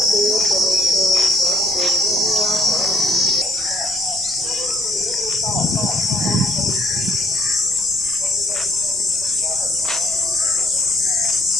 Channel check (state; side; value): noise; left; rumble, 23 dB below the sound